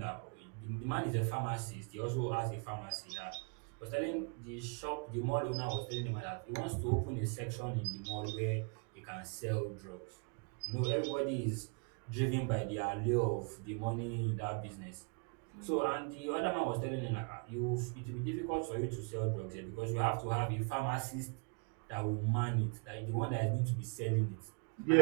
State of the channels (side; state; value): left; quieter; 36.4 dB